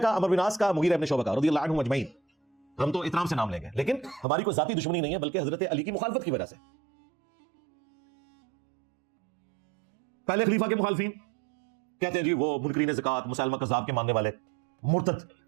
عمرو بن عاص کا، مغیرہ ابن شعبہ کا رضی اللہ عنہم اجمعین. ہم تو احترام سے نام لیں گے، لیکن ہماری کوئی ذاتی دشمنی نہیں ہے، بلکہ حضرت علی کی مخالفت کی وجہ سے. پہلے خلیفہ کے مخالفین کہتے ہیں جی وہ منکرین زکات، مسلمہ کذاب کے ماننے والے، مرتد،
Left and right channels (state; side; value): drops out; left; at 4.2 s